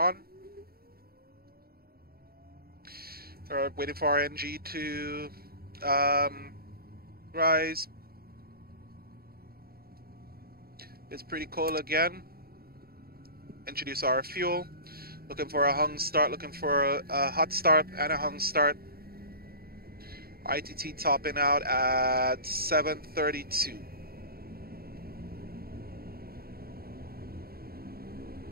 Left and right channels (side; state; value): left; late; 0.44 ms